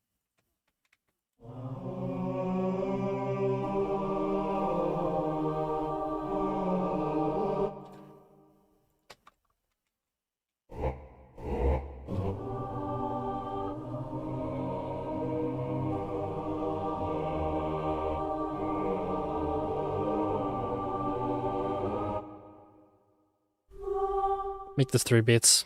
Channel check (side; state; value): both; identical; correlation 1.00